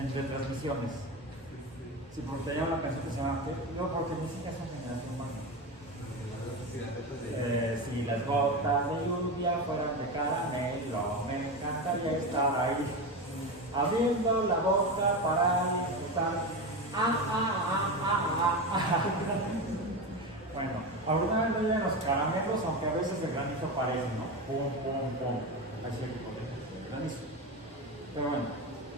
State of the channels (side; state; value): both; normal; correlation 0.20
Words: retransmisiones. Sí, porque tenía una canción que se llama no, porque ni siquiera son generación Barney. Si las gotas de lluvia fueran de caramelo, me encantaría estar ahí, abriendo la boca para estar. Bueno, alguna vez no llegan los caramelos, aunque a veces el granizo parece, ¿no? Pum, pum, pum. Así el granizo. Pero bueno,